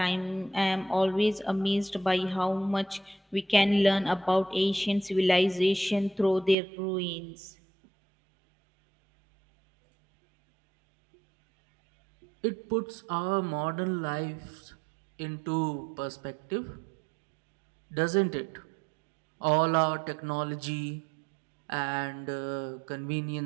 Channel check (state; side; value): drops out; left; at 6.6 s